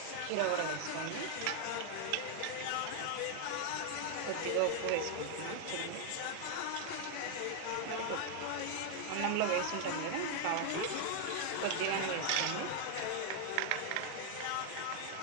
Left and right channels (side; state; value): both; different; correlation 0.00